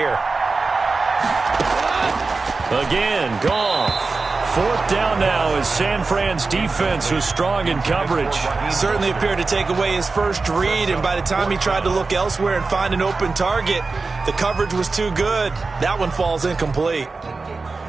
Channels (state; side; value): quieter; left; 4.0 dB